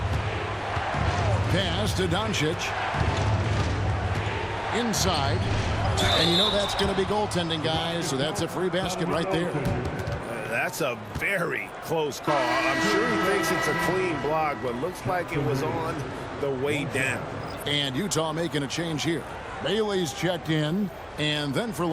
Pass to Doncic. Inside. And you know that's going to be goaltending, guys, so that's a free basket right there. That's a very close call. I'm sure he thinks it's a clean block, but looks like it was on the way down. And Utah making a change here. Bailey's checked in, and then for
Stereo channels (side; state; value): both; identical; correlation 1.00